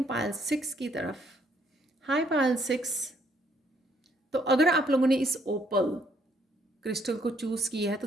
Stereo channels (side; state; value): both; normal; correlation 0.68